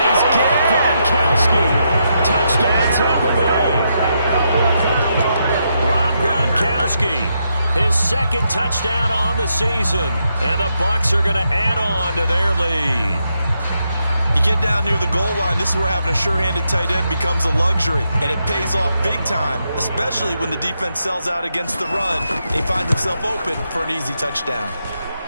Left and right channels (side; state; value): both; inverted; correlation -0.81